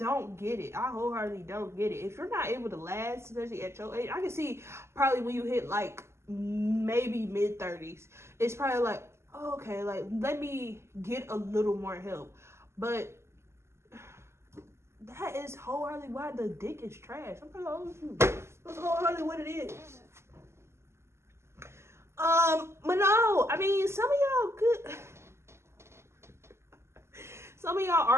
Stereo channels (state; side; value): late; left; 0.13 ms